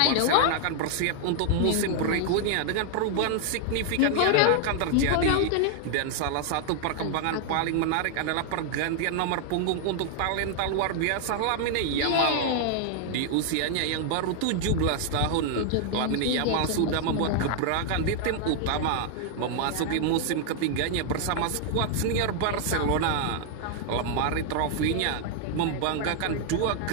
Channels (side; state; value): both; different; correlation 0.00